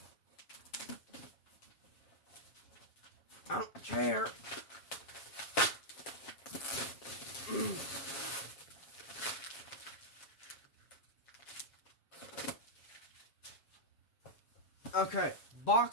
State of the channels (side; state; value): right; late; 7.5 ms